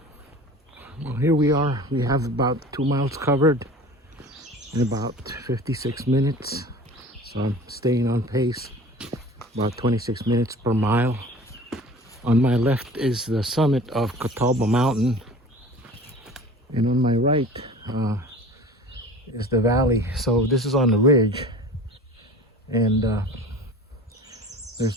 Well, here we are. We have about 2 miles covered in about 56 minutes. So I'm staying on pace, about 26 minutes per mile. On my left is the summit of Catawba Mountain. And on my right is the valley. So this is on the ridge. And there's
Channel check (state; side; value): normal; both; correlation 0.41